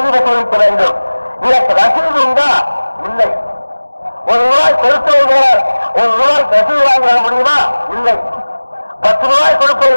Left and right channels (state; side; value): inverted; both; correlation -1.00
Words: வசூலிக்க வேண்டும். இதற்கு ரசீது உண்டா? இல்லை. 1 ரூபாய் கொடுத்தவர்கள் 1 ரூபாய் ரசீது வாங்க முடியுமா? இல்லை. 10 ரூபாய்